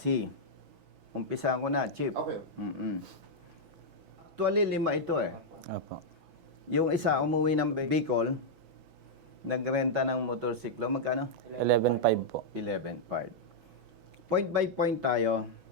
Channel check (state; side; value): late; left; 6.1 ms